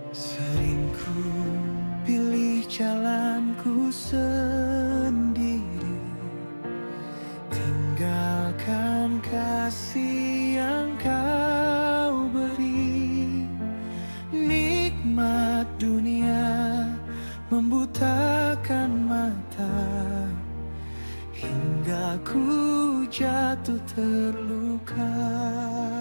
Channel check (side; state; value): both; inverted; correlation -1.00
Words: Sering ku pilih jalanku sendiri, tinggalkan kasih yang kau beri. Nikmat dunia membutakan mata, hingga ku jatuh terluka.